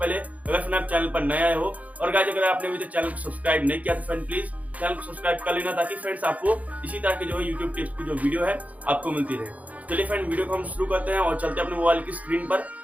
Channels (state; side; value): late; left; 0.072 ms